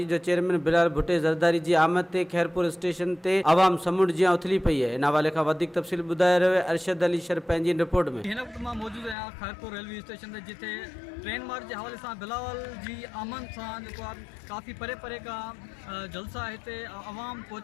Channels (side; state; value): right; drops out; at 9.2 s